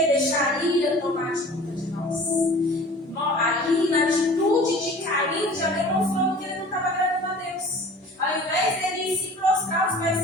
a ira tomar de conta de nós. Ali, na atitude de Caim, já demonstrou que ele não estava agradando a Deus. Ao invés dele se prostrar aos pés do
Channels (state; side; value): normal; both; correlation 0.44